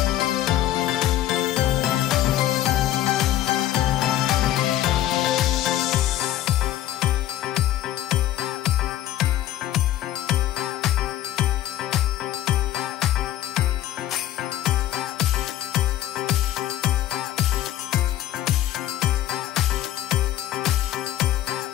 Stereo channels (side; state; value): right; quieter; 13.0 dB